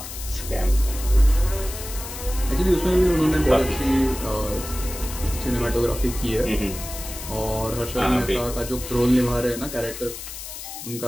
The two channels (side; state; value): left; noise; hiss, 10 dB below the sound